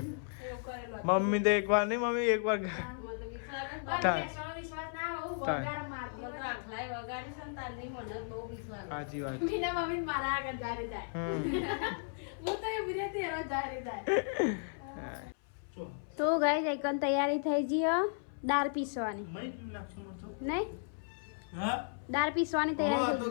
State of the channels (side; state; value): right; silent; 54 dB below the other